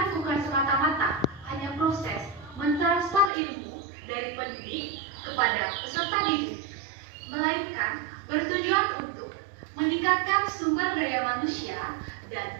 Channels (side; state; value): left; drops out; at 3.3 s